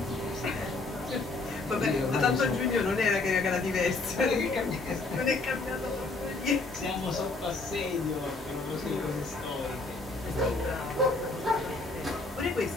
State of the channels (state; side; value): quieter; right; 3.4 dB